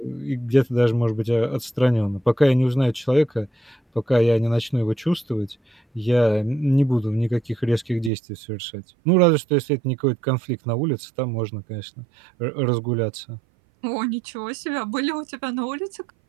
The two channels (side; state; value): left; drops out; at 8.1 s